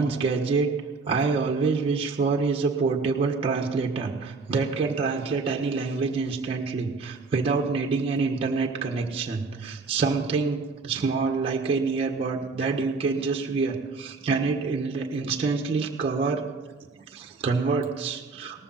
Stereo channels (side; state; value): left; quieter; 4.1 dB